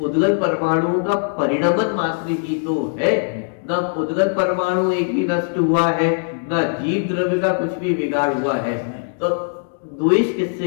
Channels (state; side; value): silent; right; digital silence